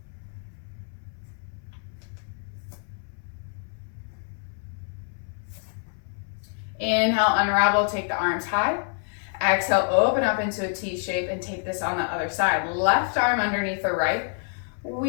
Inhale, unravel, take the arms high. Exhale, open up into a T shape and take this on the other side. Left arm underneath the right.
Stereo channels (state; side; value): silent; right; 60 dB below the other